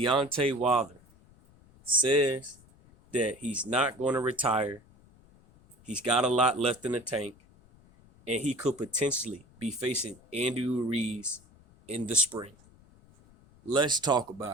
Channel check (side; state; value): left; noise; rumble, 27 dB below the sound